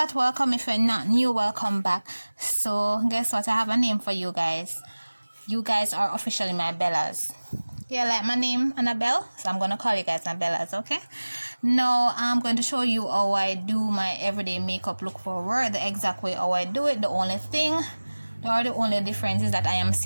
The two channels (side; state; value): both; inverted; correlation -1.00